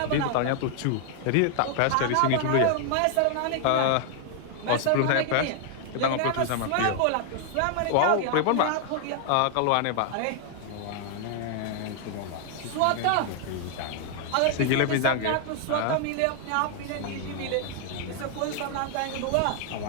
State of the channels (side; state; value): both; different; correlation 0.00